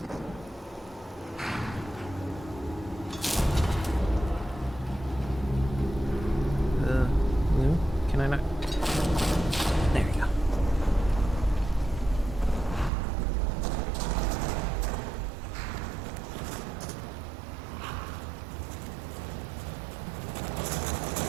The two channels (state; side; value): drops out; left; at 12.9 s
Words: No? Can I not? There you go.